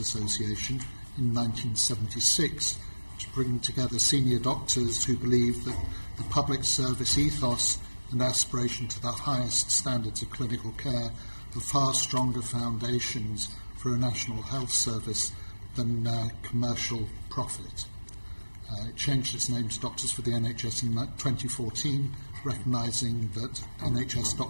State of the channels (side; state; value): both; inverted; correlation -1.00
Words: in 1976 to bring together senior doctors who believe that the public service ethos and aspiration to the highest standards of clinical care are far stronger foundations for a national health service than commercial profit. It changed its name to Doctors for the NHS in 2014, recognising that NHS